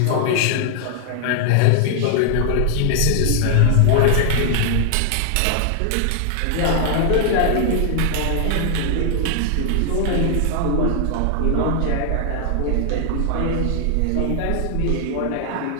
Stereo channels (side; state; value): both; different; correlation 0.00